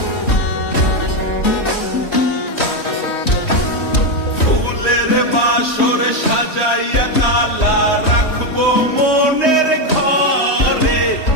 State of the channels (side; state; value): right; late; 3.2 ms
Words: বাসর সাজাইয়া কালা রাখবো মনের ঘরে,